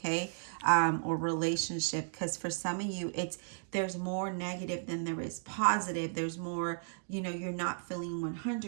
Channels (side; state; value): left; silent; digital silence